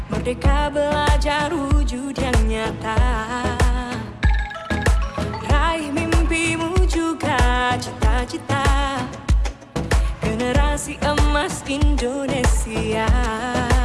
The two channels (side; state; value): both; identical; correlation 1.00